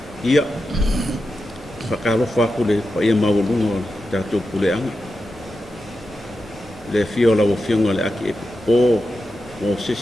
ia whakalo whakule pa ia maulunga tatu pule anga le fiola o fionga le aki o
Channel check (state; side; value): normal; both; correlation 0.90